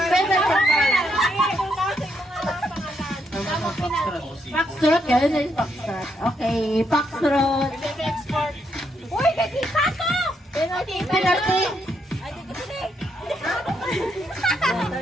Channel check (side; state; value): both; normal; correlation 0.77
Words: Foxtrot, gano'n na yung Foxtrot. Okay, Foxtrot. Uy, nakita ko! Penalty.